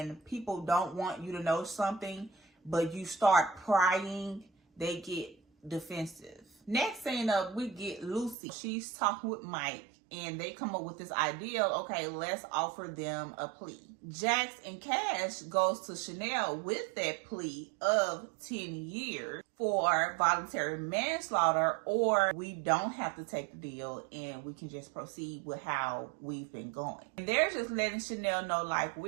people don't want you to know something, but you start prying, they get defensive. Next scene up, we get Lucy. She's talking with Mike, and they come up with this idea, okay, let's offer them a plea. Jax and Cash goes to Chanel with that plea of 10 years for voluntary manslaughter, or we don't have to take the deal and we can just proceed with how we've been going. And they're just letting Chanel know, like,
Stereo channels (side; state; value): left; drops out; at 8.3 s